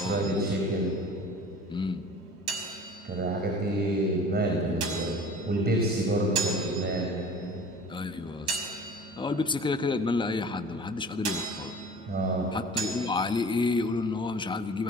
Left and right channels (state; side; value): normal; both; correlation 0.43